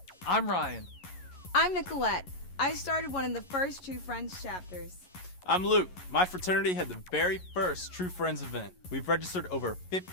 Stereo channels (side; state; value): right; late; 11 ms